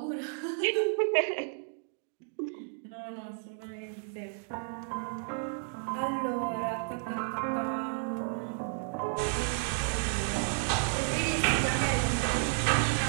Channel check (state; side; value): silent; left; 56 dB below the other